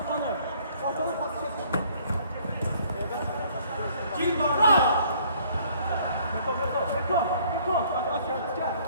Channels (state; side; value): inverted; both; correlation -0.60